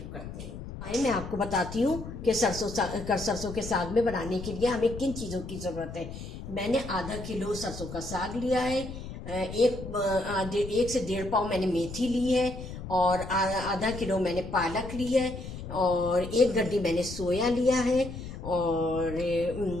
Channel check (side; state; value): left; noise; rumble, 10 dB below the sound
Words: करते हैं। आइए मैं आपको बताती हूँ कि सरसों के साग में बनाने के लिए हमें किन चीज़ों की ज़रूरत है। मैंने आधा किलो सरसों का साग लिया है, एक से 1.5 पाव मैंने मेथी ली है और आधा किलो मैंने पालक ली है और 1 गड्डी मैंने सोया लिया है और